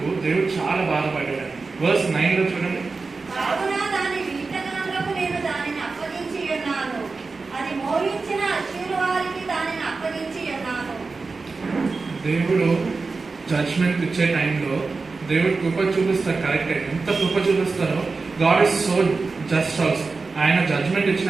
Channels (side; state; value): left; quieter; 4.1 dB